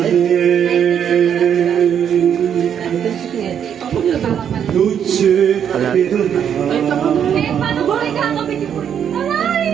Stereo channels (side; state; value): left; quieter; 8.6 dB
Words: Luce Paano ba kayo kakabit yung